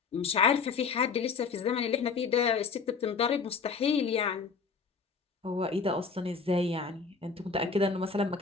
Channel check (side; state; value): right; quieter; 5.2 dB